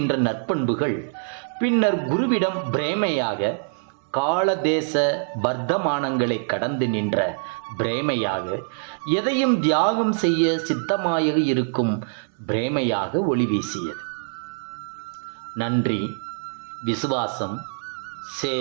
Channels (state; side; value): silent; left; 62 dB below the other